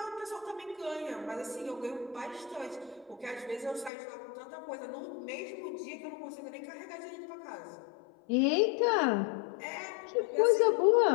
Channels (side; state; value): right; drops out; at 3.9 s